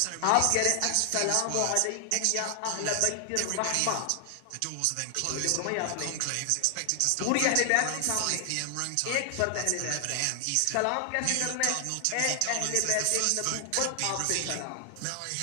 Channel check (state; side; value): different; both; correlation 0.00